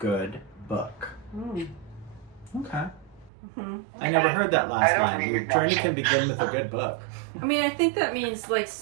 book. Okay. Mm-hmm. I never heard that last don't line. Your read journey that. can begin with a good book. I mean, I think that means like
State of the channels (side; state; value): left; drops out; at 3.3 s